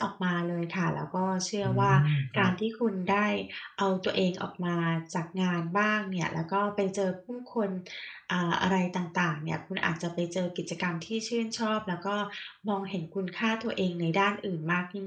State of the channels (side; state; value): both; identical; correlation 1.00